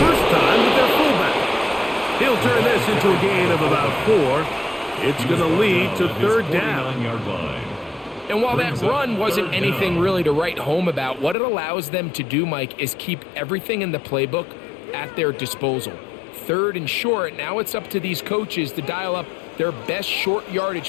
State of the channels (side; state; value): right; drops out; at 11.4 s